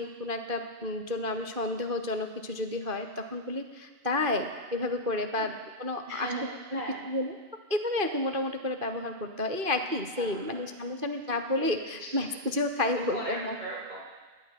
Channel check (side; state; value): left; late; 2.5 ms